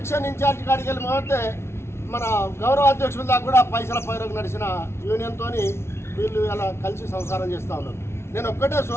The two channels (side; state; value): right; late; 0.12 ms